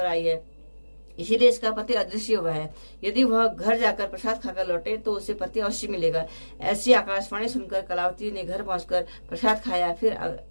आई है। इसीलिए इसका पति अदृश्य हुआ है। यदि वह घर जाकर प्रसाद खाकर लौटे तो उसे पति अवश्य मिलेगा। ऐसी आकाशवाणी सुनकर कलावती ने घर पहुंचकर प्रसाद खाया, फिर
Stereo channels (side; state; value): both; inverted; correlation -1.00